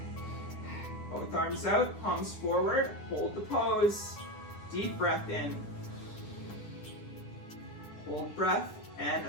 4. Both arms out, palms forward, hold the pose. Deep breath in. Hold breath and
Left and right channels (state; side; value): late; right; 9.9 ms